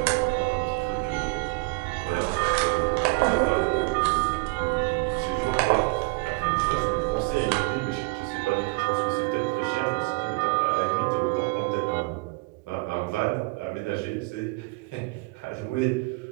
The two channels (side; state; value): left; quieter; 28.1 dB